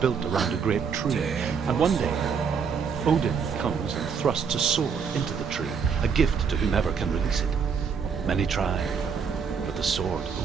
around a great tree, and one day Odin comes and thrusts a sword into the tree, a gift to whomever can release it. Many try, but the sword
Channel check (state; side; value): quieter; left; 6.3 dB